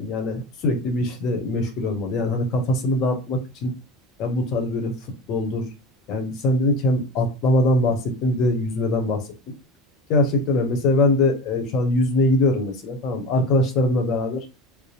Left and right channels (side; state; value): both; normal; correlation 0.32